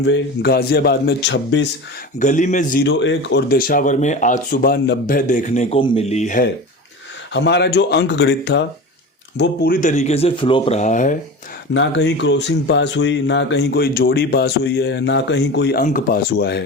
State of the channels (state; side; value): normal; both; correlation 0.30